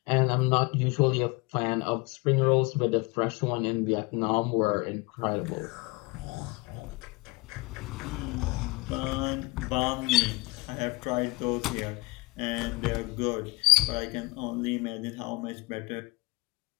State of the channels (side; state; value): right; quieter; 23.9 dB